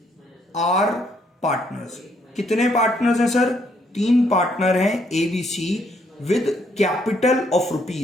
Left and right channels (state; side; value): normal; both; correlation 0.71